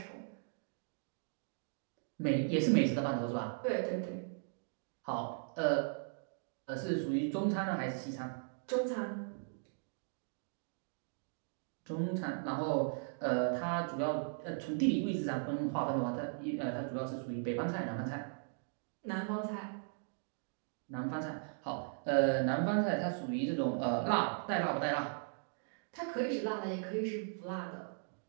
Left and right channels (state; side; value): silent; left; digital silence